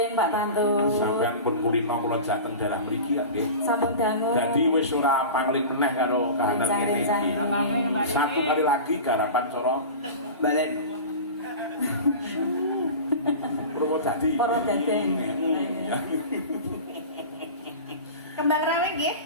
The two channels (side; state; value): both; inverted; correlation -0.32